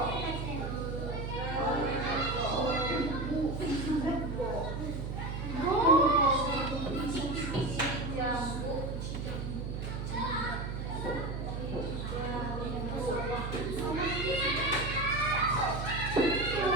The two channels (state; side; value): noise; right; hum, 4 dB below the sound